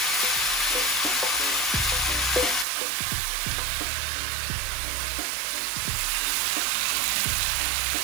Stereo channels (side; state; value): left; drops out; at 2.7 s